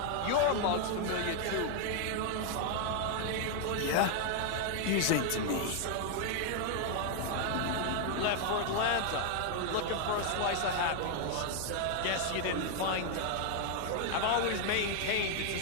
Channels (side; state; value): both; different; correlation 0.00